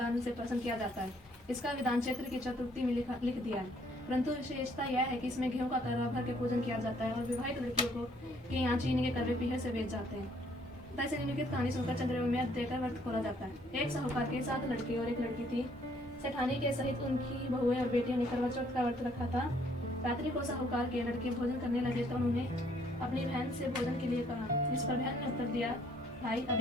से प्रसन्न किया जाता है। इसका विधान चैत्र की चतुर्थी में लिख दिया है, परंतु विशेषता यह है कि इसमें गेहूं का करवा भर के पूजन किया जाता है और विवाहित लड़कियों को के यहाँ चीनी के करवे पीढ़े से बेच जाते हैं। तैसे निम्नलिखित कहानी सुनकर चंद्रमा में देकर व्रत खोला जाता है। एक साहूकार के 7 लड़के और एक लड़की थी। सेठानी के सहित उनकी बहुएं और बेटियों ने करवा चौथ का व्रत रखा था। रात्रि को साहूकार के लड़के भोजन करने लगे तो उन्होंने अपनी बहन से भोजन के लिए कहा। इस पर बहन ने उत्तर दिया, भाई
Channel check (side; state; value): both; normal; correlation 0.64